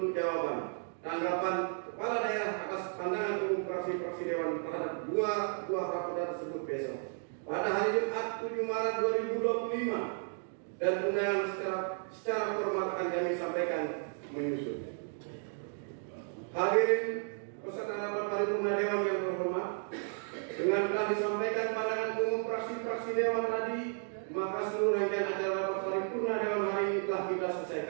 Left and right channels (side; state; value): left; silent; 55 dB below the other